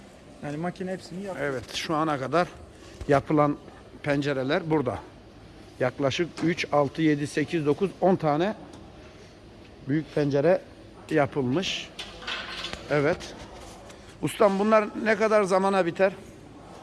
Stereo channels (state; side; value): identical; both; correlation 1.00